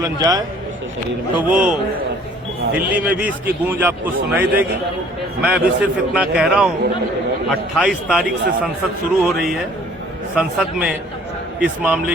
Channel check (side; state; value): both; normal; correlation 0.55